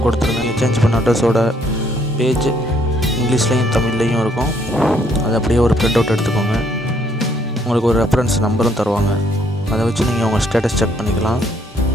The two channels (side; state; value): both; normal; correlation 0.68